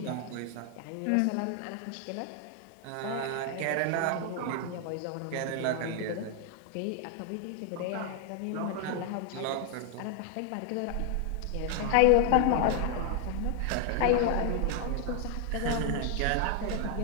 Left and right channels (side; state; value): both; different; correlation 0.00